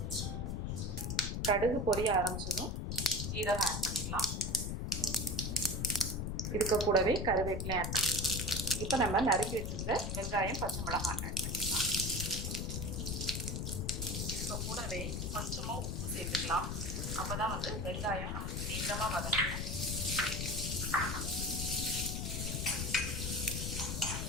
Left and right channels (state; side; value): noise; left; rumble, 2 dB below the sound